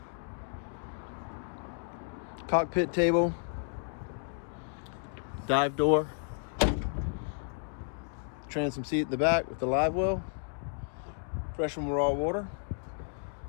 cockpit table, dive door, transom seat at the back with the live well, fresh and raw water,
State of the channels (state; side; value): silent; right; 56 dB below the other